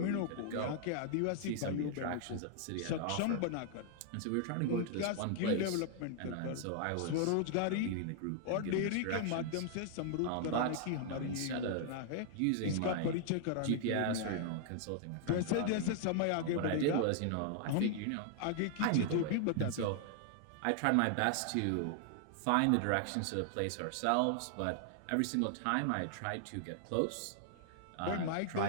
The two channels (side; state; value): both; different; correlation 0.00